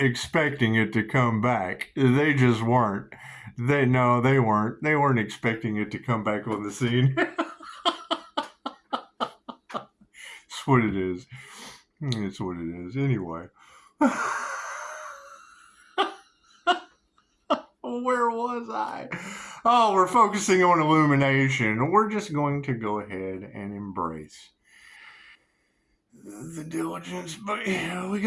expecting it to come back. They just weren't. They weren't. They weren't expecting it to come back on the scene. It's what it is. It's what it is. Anyway. Where was I? Oh, we're focusing on illumination. We're just going to go ahead and embrace the diligence, but we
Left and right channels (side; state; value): both; identical; correlation 1.00